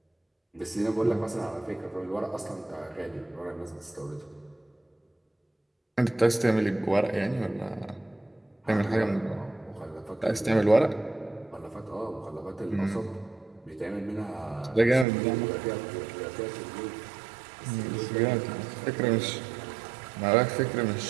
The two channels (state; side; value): drops out; left; at 15.1 s